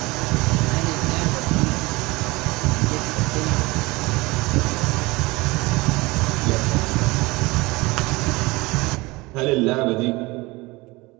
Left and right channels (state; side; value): quieter; left; 22.7 dB